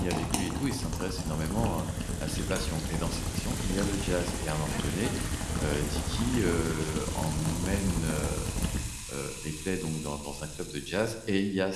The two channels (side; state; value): both; identical; correlation 1.00